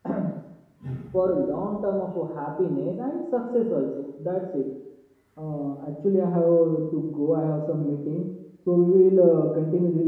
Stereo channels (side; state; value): both; identical; correlation 1.00